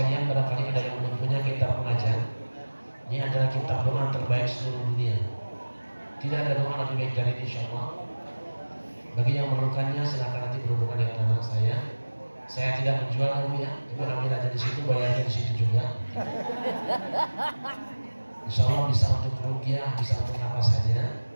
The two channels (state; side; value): inverted; both; correlation -1.00